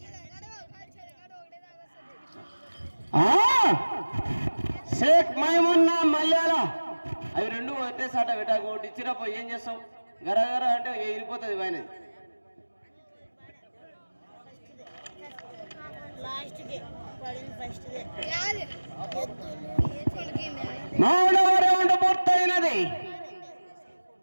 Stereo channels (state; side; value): inverted; both; correlation -1.00